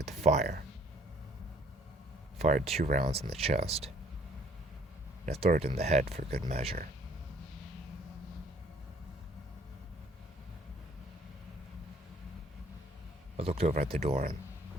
to fire. I fired 2 rounds in the chest, and a third in the head for good measure. I looked over at the door, and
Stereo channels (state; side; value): normal; both; correlation 0.59